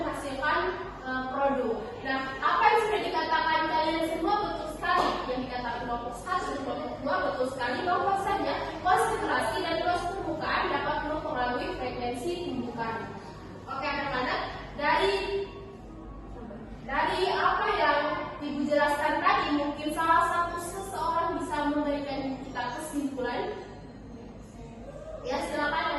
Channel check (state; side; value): identical; both; correlation 1.00